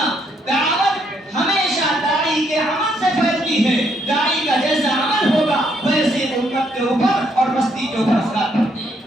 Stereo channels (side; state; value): both; normal; correlation 0.73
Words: دعوت ہمیشہ داعی کے عمل سے پھیلتی ہے، داعی کا جیسا عمل ہوگا ویسے امت کے اوپر اور بستی کے اوپر اثرات پڑتے ہیں۔